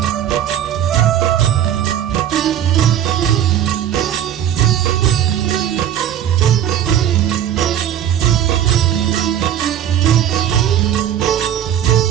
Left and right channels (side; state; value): left; quieter; 10.4 dB